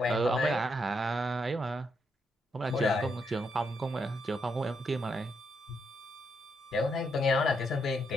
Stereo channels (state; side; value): normal; both; correlation 0.79